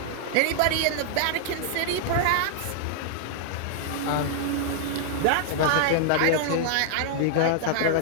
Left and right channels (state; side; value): different; both; correlation -0.01